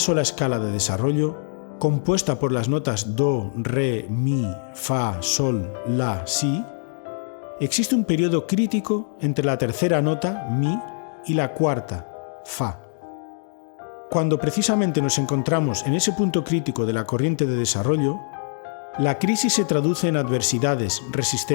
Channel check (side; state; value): right; silent; digital silence